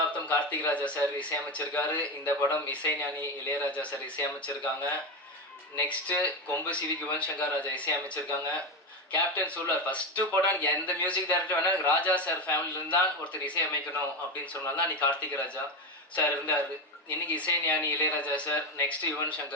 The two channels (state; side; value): normal; both; correlation 0.16